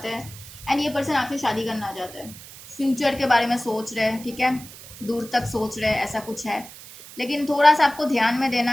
हैं एंड ये पर्सन आपसे शादी करना चाहते हैं। फ्यूचर के बारे में सोच रहे हैं, ठीक है, दूर तक सोच रहे हैं, ऐसा कुछ है। लेकिन थोड़ा सा आपको ध्यान में देना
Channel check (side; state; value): right; noise; hiss, 17 dB below the sound